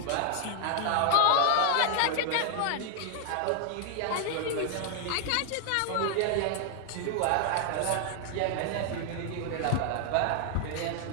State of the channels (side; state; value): both; different; correlation 0.00